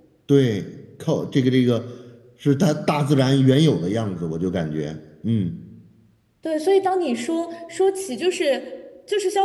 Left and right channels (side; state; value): both; identical; correlation 1.00